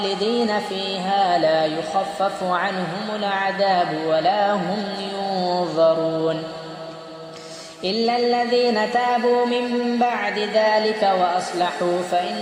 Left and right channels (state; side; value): identical; both; correlation 1.00